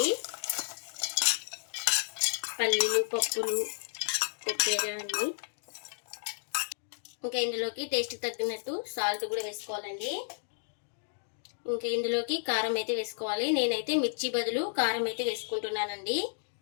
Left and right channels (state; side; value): silent; right; digital silence